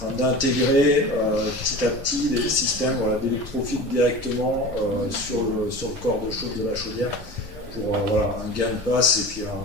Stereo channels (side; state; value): both; normal; correlation 0.35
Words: d'intégrer petit à petit des systèmes d'électrofiltre directement sur le corps de chauffe de la chaudière, pour un gain de passe et